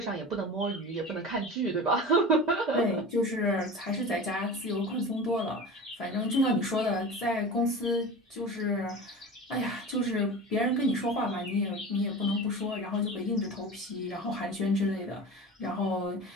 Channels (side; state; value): both; normal; correlation 0.32